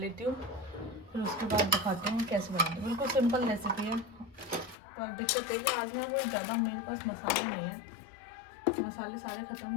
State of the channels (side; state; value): right; drops out; at 4.8 s